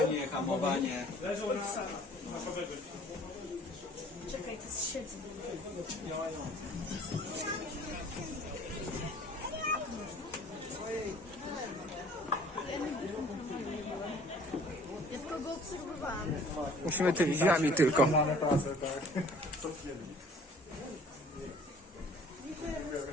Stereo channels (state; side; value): normal; both; correlation 0.52